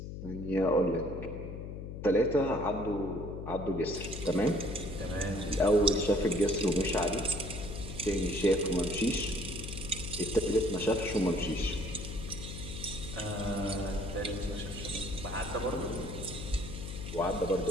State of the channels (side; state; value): left; noise; hum, 8 dB below the sound